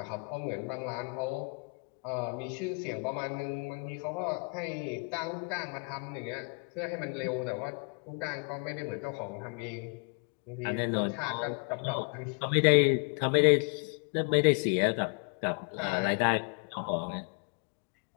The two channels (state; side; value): quieter; right; 38.0 dB